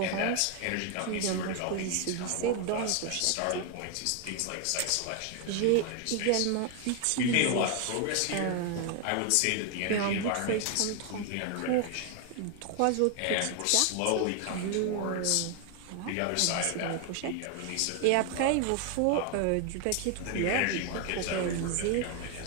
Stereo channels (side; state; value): both; different; correlation 0.01